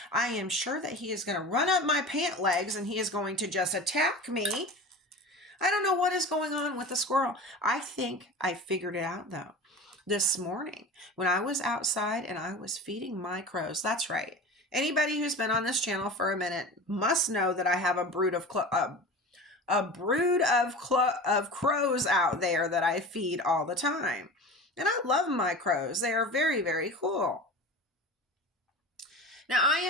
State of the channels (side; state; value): both; normal; correlation 0.33